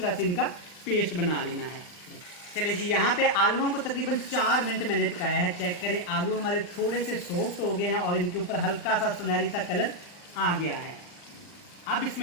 से इनका पेस्ट बना लेना है। चलिए जी, यहाँ पे आलूओं को तकरीबन 4 मिनट मैंने पकाया है। चेक करें, आलू हमारे थोड़े से सॉफ्ट हो गए हैं और इनके ऊपर हल्का सा सुनहरी सा कलर आ गया है। अब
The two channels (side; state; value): right; late; 39 ms